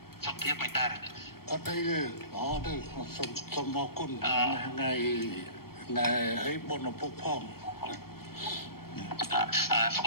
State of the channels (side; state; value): right; late; 0.94 ms